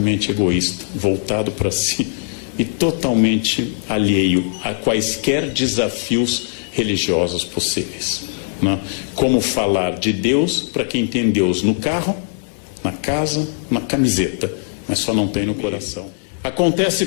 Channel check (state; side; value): silent; right; digital silence